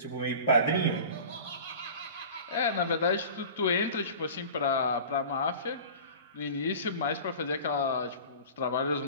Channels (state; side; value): inverted; both; correlation -0.38